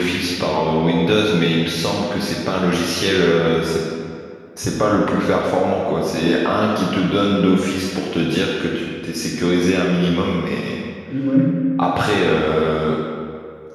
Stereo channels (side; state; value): both; identical; correlation 1.00